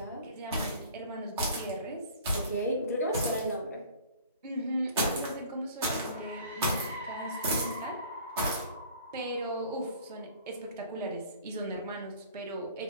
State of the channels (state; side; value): inverted; both; correlation -0.47